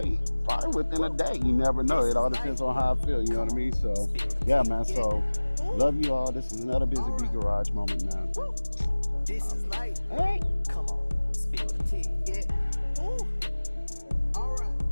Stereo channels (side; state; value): both; inverted; correlation -1.00